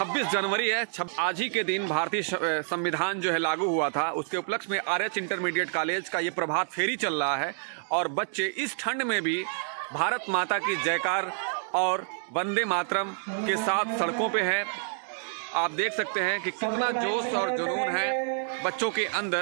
जनवरी है। आज ही के दिन भारतीय संविधान जो है लागू हुआ था। उसके उपलक्ष्य में आरएच इंटरमीडिएट कॉलेज का ये प्रभात फेरी चल रहा है और बच्चे इस ठंड में भी भारत माता की जयकार और वंदे मातरम के साथ सड़कों पे है। आप देख सकते हैं कि कितना जोश और जुनून है बच्चों के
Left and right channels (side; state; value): left; silent; digital silence